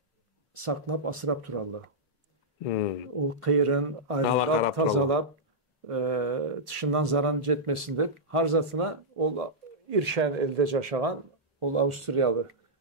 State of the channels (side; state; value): both; normal; correlation -0.11